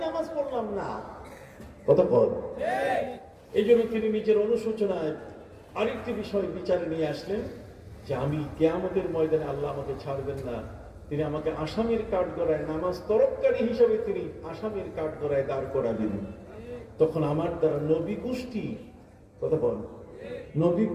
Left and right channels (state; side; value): identical; both; correlation 1.00